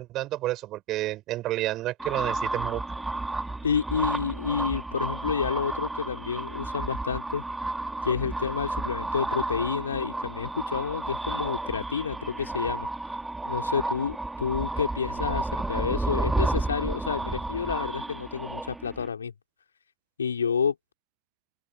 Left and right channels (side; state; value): both; normal; correlation -0.04